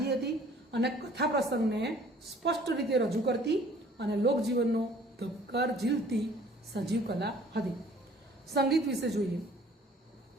હતી અને કથા પ્રસંગને સ્પષ્ટ રીતે રજૂ કરતી અને લોકજીવનનો ધબકાર ઝીલતી સજીવ કલા હતી. સંગીત વિશે જોઈએ.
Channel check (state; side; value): normal; both; correlation 0.54